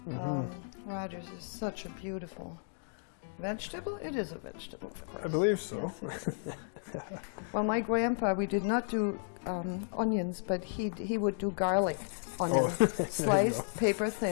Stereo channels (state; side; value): silent; right; digital silence